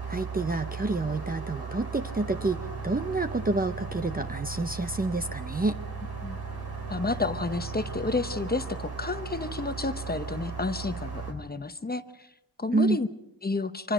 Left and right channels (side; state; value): both; normal; correlation 0.52